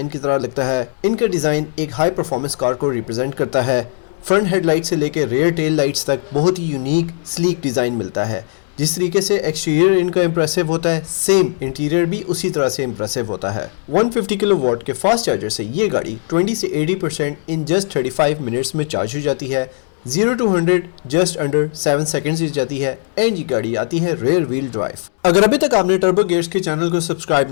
की तरह लगता है। इनका डिज़ाइन एक हाई परफॉर्मेंस कार को रिप्रेजेंट करता है। फ्रंट हेडलाइट से लेकर रेयर टेल लाइट्स तक बहुत ही यूनिक स्लीक डिज़ाइन मिलता है। जिस तरीके से एक्सटीरियर इनका इंप्रेसिव होता है, सेम इंटीरियर भी उसी तरह से इंप्रेसिव होता है। 150 किलोवाट के फास्ट चार्जर से ये गाड़ी 20 से 80% इन जस्ट 35 मिनट्स में चार्ज हो जाती है। 0 to 100 जस्ट अंडर 7 सेकेंड्स हो जाती है एंड ये गाड़ी आती है रेयर व्हील ड्राइव। अगर अभी तक आपने टर्बो गियर्स के चैनल को सब्सक्राइब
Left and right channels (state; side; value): silent; right; 67 dB below the other